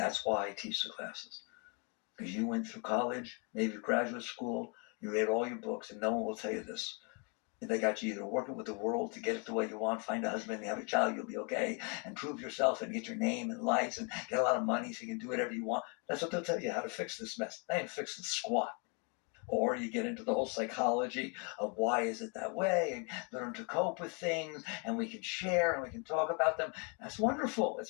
why I teach the classes. Because you went through college, maybe graduate school, you read all your books, and no one will tell you this. They got you either working with the world to get it the way you want, find a husband, have a child, you'll be okay, and prove yourself and get your name and lights and get a lot of money so you can do whatever you want. That's what they'll tell you, how to fix this mess. They ain't fixing squat. Or you get into the whole psychology of why is it that way and learn to cope with things and we can share and we can talk about them. That's wonderful. It's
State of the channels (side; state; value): right; quieter; 35.4 dB